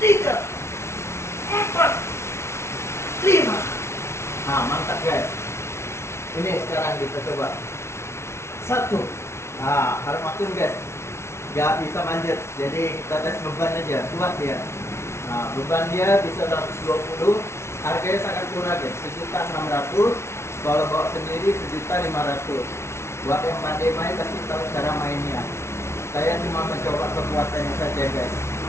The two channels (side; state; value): right; late; 0.13 ms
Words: 3, 4, 5. Nah, mantap guys. Ini sekarang kita coba. 1. Nah, harus makin guys. Gak bisa manjat, jadi kita tes beban aja, kuat dia. Nah, beban dia bisa 120, harganya sangat murah guys, 1.600. Kalau bawa sendiri 1.500. Buat yang pandai main pasti tahu cara mainnya. Saya cuma mencoba kekuatannya saja guys.